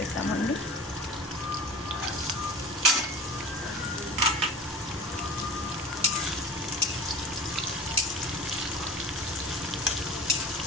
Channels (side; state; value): both; normal; correlation 0.38